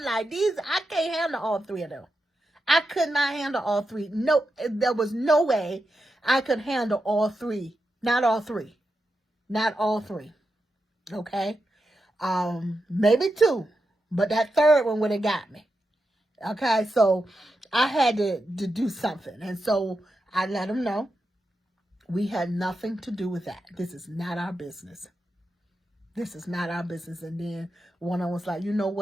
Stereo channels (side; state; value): both; normal; correlation 0.88